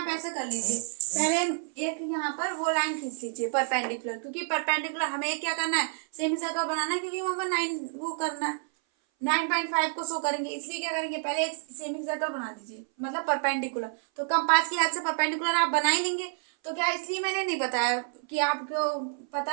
ऐसा कर लीजिए, पहले एक यहाँ पर वो लाइन खींच लीजिए परपेंडिकुलर, क्योंकि परपेंडिकुलर हमें क्या करना है, सेमी सर्कल बनाना है, क्योंकि वहाँ पर 9 वो करना है, 9.5 को शो करेंगे, इसलिए क्या करेंगे, पहले एक सेमी सर्कल बना लीजिए, मतलब परपेंडिकुलर। तो कंपास की हेल्प से परपेंडिकुलर आप बना ही लेंगे। तो क्या, इसलिए मैंने नहीं बताया कि आपको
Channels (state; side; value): silent; left; 59 dB below the other